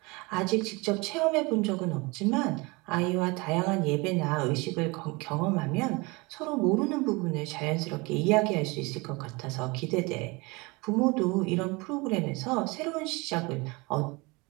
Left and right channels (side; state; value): left; quieter; 26.0 dB